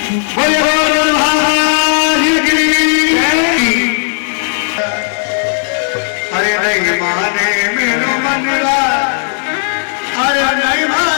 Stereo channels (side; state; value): right; silent; digital silence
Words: अरे नहीं माने मेरो मनवा, अरे नहीं